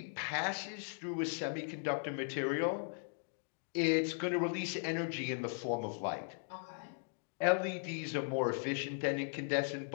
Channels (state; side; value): silent; right; digital silence